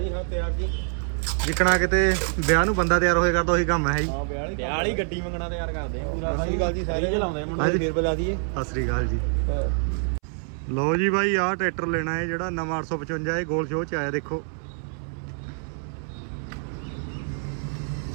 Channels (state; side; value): silent; left; 61 dB below the other